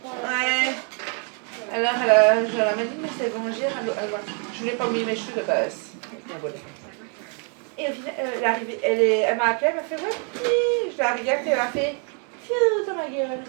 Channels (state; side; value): quieter; left; 40.0 dB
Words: Ouais. Alors, je la dit, mais c'est étrangère. Je voulais pas mouiller mes cheveux de base. Et au final, elle m'a appelé, elle m'a fait ouais, oui. Je la regarde et elle m'a fait fiou dans ma gueule.